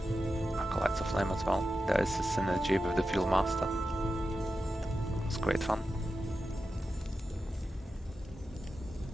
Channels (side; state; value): both; normal; correlation 0.91